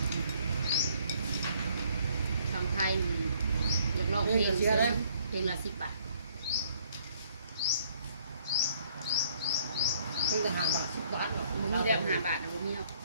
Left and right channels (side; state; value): both; inverted; correlation -0.63